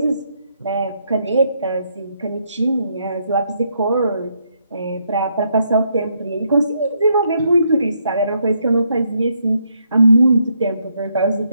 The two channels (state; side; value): inverted; both; correlation -0.75